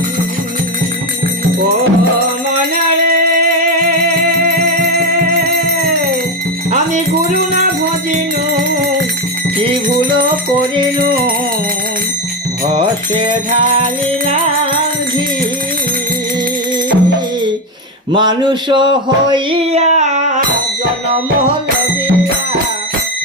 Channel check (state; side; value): normal; both; correlation 0.12